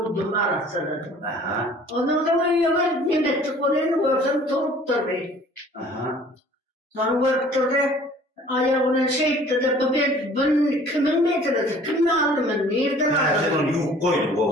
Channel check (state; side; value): normal; both; correlation 0.51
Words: arasıladım. Onun da uyuyor, nimetlik olayını görsem turup durdu. Sonra gördü Ayağına şey etti de ben kimin metresi, kim aldı ben, nereden Ha, sen aldı? onu yuh koydun